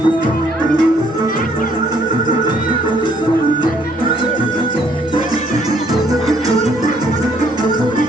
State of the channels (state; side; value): normal; both; correlation 0.65